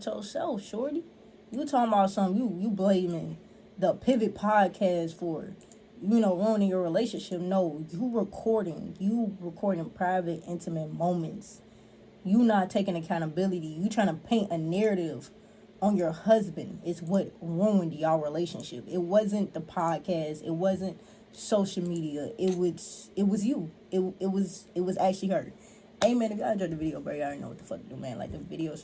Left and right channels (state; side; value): identical; both; correlation 1.00